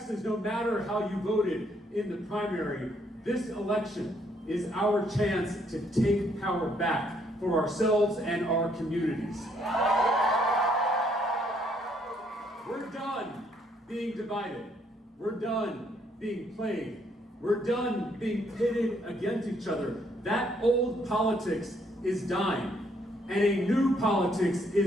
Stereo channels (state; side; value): normal; both; correlation 0.70